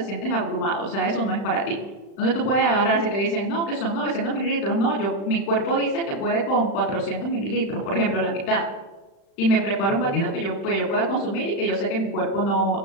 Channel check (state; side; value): late; right; 35 ms